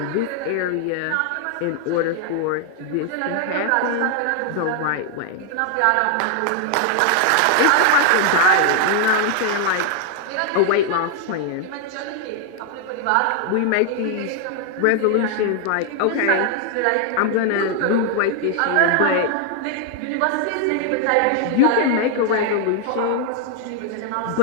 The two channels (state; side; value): different; both; correlation 0.00